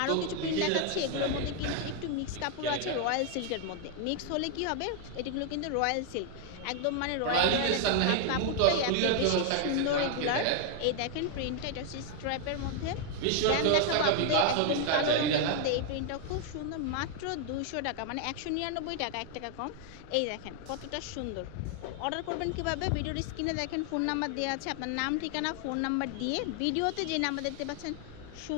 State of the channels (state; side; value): different; both; correlation 0.00